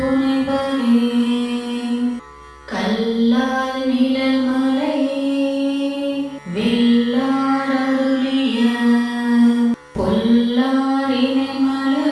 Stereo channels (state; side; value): identical; both; correlation 1.00